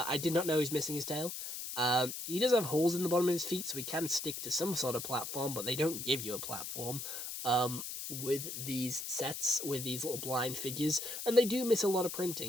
did not know he's missing his tail. He does have holes in the bottom of his feet, so he can stick to some sort of platform, but they don't give you a platform. With these sets, with these little blind figures, and they do miss a lot of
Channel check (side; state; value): left; noise; hiss, 6 dB below the sound